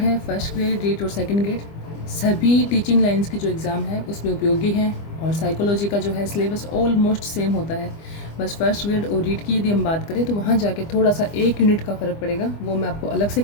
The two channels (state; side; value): late; right; 25 ms